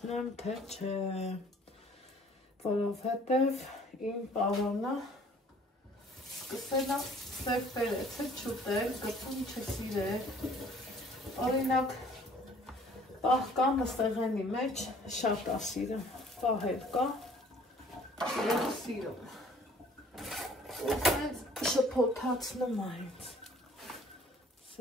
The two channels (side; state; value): both; normal; correlation 0.55